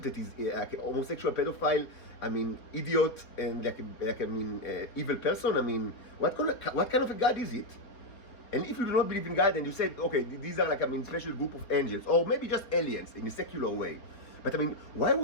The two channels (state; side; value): late; right; 4.2 ms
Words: that is like a homosexual, pedophile, idiot, and evil person? What kind of a God is it? And if you do not believe in God, and you said, okay, these are like special group of angels, or maybe just aliens in a secular way. But why